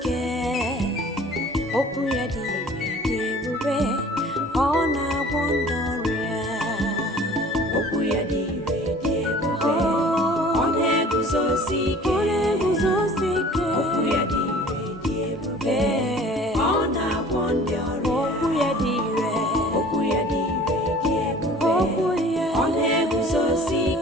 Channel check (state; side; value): normal; both; correlation 0.47